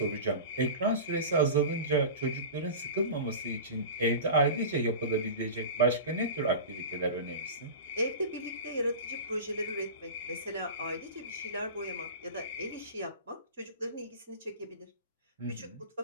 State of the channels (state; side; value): inverted; both; correlation -0.31